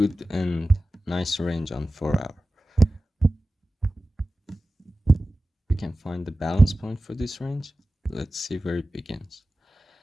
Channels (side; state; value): both; normal; correlation 0.95